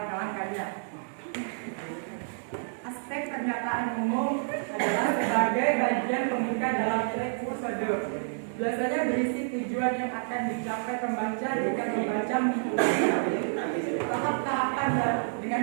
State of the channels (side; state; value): left; silent; digital silence